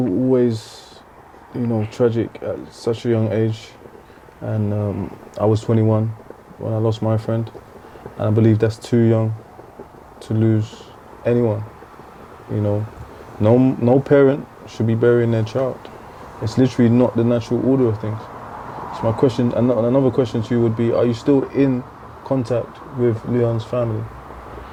you know, tragic at such a young age. And I was 21 when I lost my friend. And I believe that's too young to lose anyone. You know, no parent should be burying their child. It's literally not the natural order of things. So my question, another question to you would be, are you still in contact with Leon's family?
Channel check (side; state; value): both; identical; correlation 1.00